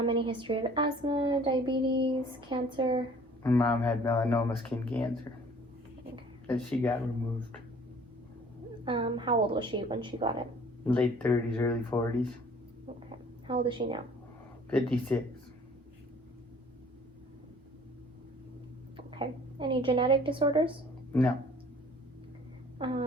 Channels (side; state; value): both; normal; correlation 0.53